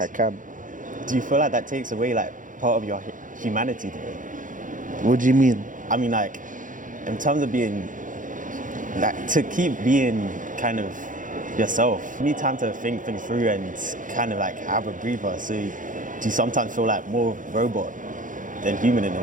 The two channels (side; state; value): left; late; 0.38 ms